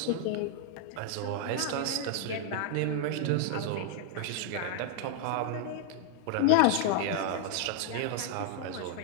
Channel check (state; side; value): different; both; correlation 0.00